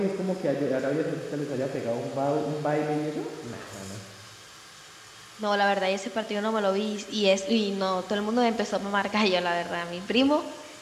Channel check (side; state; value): both; identical; correlation 1.00